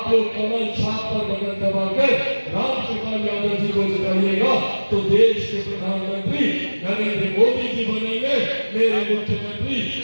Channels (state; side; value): inverted; both; correlation -1.00